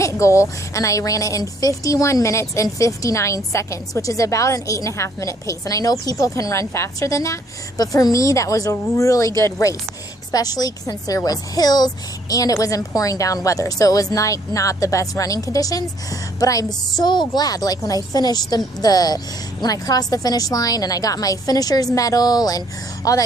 goal, and I ran it in 51 minutes and 59 seconds, which is about an 8.5-minute pace. And I know people can run faster than that, but for me, that was a really good race, especially since there was hills and it was in pouring down weather. So it was not the best running conditions, but I'm so glad, like when I finished when I crossed the finish line and I got my finisher's medal and all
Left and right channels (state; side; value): normal; both; correlation 0.66